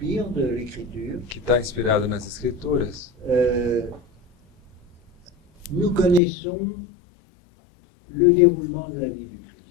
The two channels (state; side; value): drops out; right; at 6.2 s